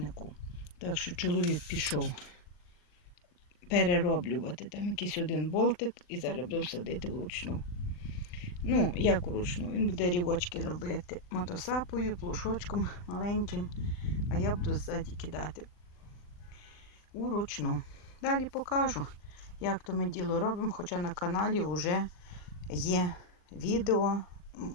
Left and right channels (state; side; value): late; right; 39 ms